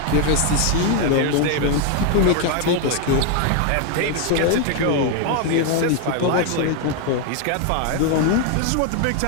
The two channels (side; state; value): both; different; correlation 0.01